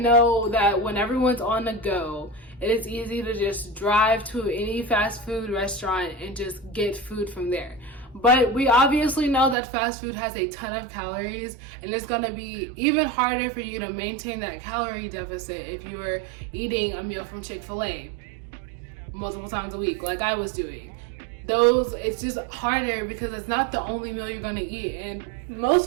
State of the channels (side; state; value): left; drops out; at 9.6 s